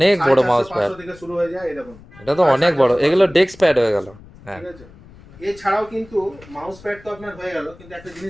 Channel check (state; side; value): noise; left; rumble, 22 dB below the sound